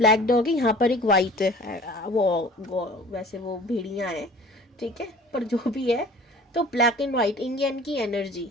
डॉग है, यहाँ पर एक व्हाइट है। वो वैसे वो भेड़िया है। ठीक है, पर जो भी है तो ब्लैक एंड व्हाइट इंग यांग की एनर्जी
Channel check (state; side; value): normal; both; correlation 0.46